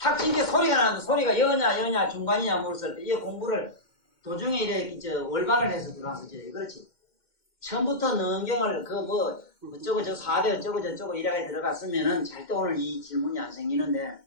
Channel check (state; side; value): late; right; 2.1 ms